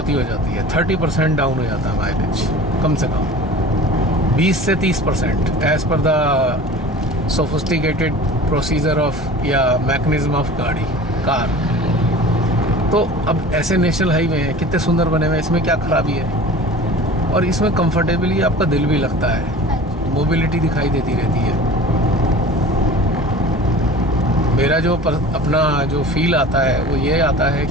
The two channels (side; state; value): both; normal; correlation 0.40